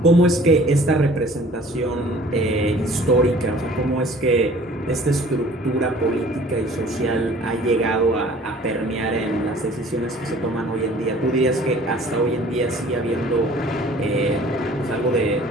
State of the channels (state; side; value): normal; both; correlation 0.51